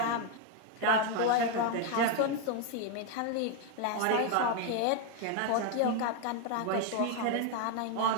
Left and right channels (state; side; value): different; both; correlation 0.01